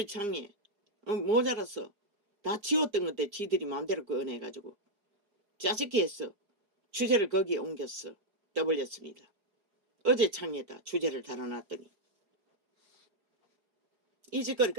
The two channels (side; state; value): left; late; 4.8 ms